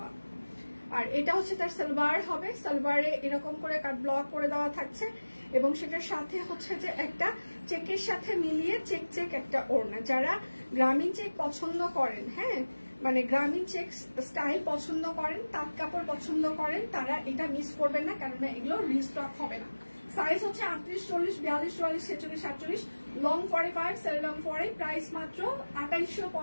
আর এটা হচ্ছে তার সালোয়ার হবে, সালোয়ারে এরকম করে কাট ব্লক করে দেওয়া থাকছে এবং সেটার সাথে হচ্ছে যে একটা চেকের সাথে মিলিয়ে চেক চেক একটা ওড়না। যারা গ্রামীণ চেক পছন্দ করেন, হ্যাঁ মানে গ্রামীণ চেক স্টাইল পছন্দ করেন, তাঁত কাপড় পছন্দ করেন, তারা এটা মিস করবেন না, কারণ এগুলো রিস্টক হবে না। সাইজ হচ্ছে 38, 40, 42, 44, 46, 48, লং 45, সেল লং 40। প্রাইস মাত্র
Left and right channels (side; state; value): both; inverted; correlation -1.00